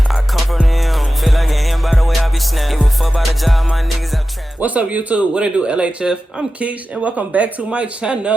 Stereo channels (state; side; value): normal; both; correlation 0.94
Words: I come from them. Feel like an M by the way I be snapping. Give a fuck about the job, my niggas out trapping. What's up, YouTube? What it do, LHF? I'm Kisha, and welcome back to my